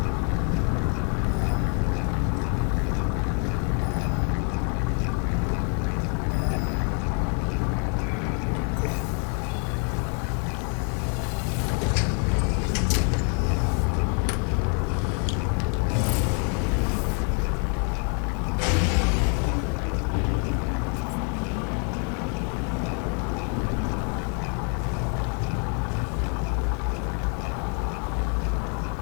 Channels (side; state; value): right; quieter; 39.8 dB